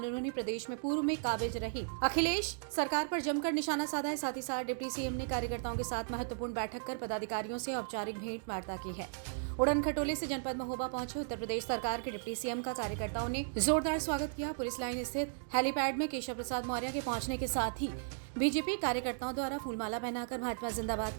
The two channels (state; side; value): silent; left; digital silence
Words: उन्होंने प्रदेश में पूर्व में काबिज रही अखिलेश सरकार पर जमकर निशाना साधा है। साथ ही साथ डिप्टी सीएम ने कार्यकर्ताओं के साथ महत्वपूर्ण बैठक कर पदाधिकारियों से औपचारिक भेंट वार्ता की है। उड़न खटोले से जनपद महोबा पहुंचे उत्तर प्रदेश सरकार के डिप्टी सीएम का कार्यकर्ताओं ने जोरदार स्वागत किया। पुलिस लाइन स्थित हेलीपैड में केशव प्रसाद मौर्य के पहुंचने के साथ ही बीजेपी कार्यकर्ताओं द्वारा फूलमाला पहनाकर भाजपा जिंदाबाद